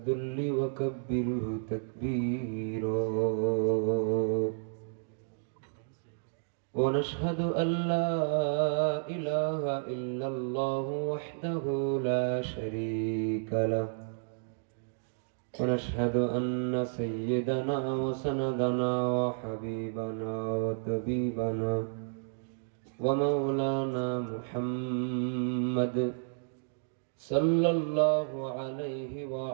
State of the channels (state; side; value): silent; left; digital silence